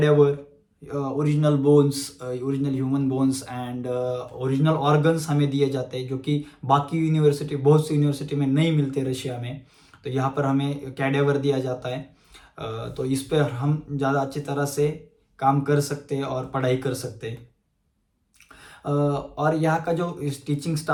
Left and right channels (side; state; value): both; identical; correlation 1.00